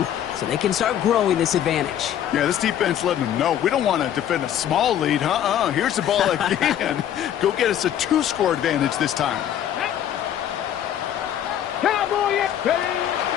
so they can start growing this advantage. Yeah, this defense letting them know we don't want to defend a small lead. Here's the ball again. Go get us a 2-score advantage this time.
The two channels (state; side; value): quieter; right; 10.5 dB